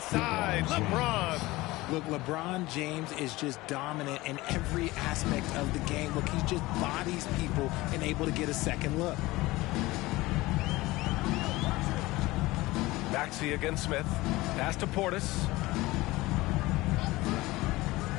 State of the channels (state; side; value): quieter; right; 19.8 dB